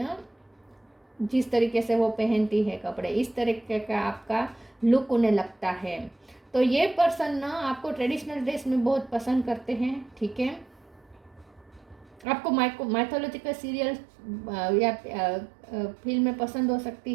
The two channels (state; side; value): drops out; left; at 12.2 s